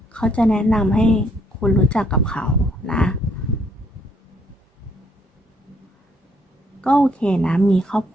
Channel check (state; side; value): normal; both; correlation 0.68